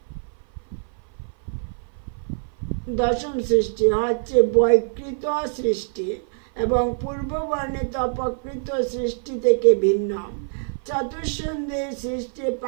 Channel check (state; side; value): silent; left; 56 dB below the other